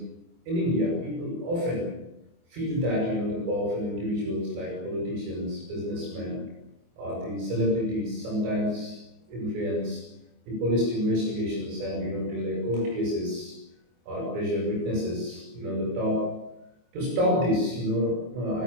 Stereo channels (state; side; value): late; left; 24 ms